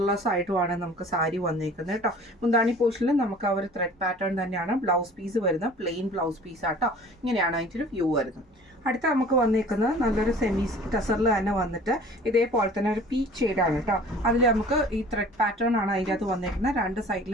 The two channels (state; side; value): normal; both; correlation 0.47